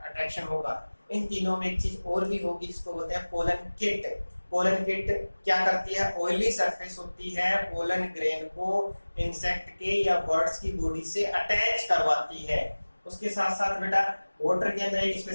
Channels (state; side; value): inverted; both; correlation -1.00